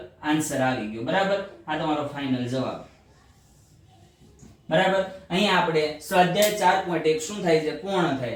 આન્સર આવી ગયો બરાબર આ તમારો ફાઇનલ જવાબ બરાબર અહીંયા આપણે સ્વાધ્યાય 4.1 શું થાય છે પૂર્ણ થાય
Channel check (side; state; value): both; identical; correlation 1.00